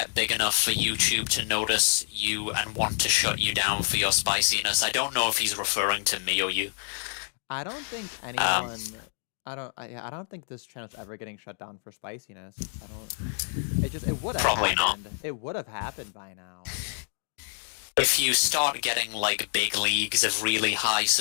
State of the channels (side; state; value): right; silent; digital silence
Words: big enough for YouTube to notice you and want to shut you down for your spiciness. I don't know if he's referring to me or you. I don't think anyone... I don't think this channel's ever getting shut down for spiciness. It would have happened. Not. It would have happened by now. If you start getting, like, big leagues of really high